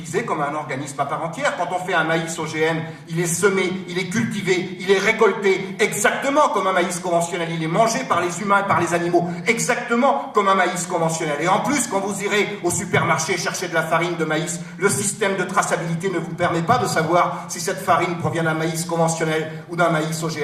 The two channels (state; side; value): identical; both; correlation 1.00